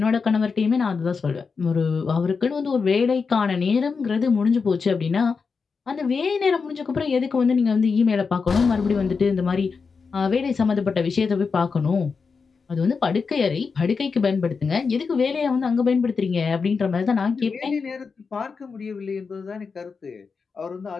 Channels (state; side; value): quieter; right; 5.1 dB